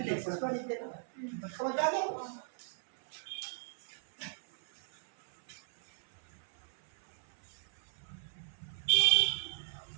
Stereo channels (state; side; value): silent; left; 53 dB below the other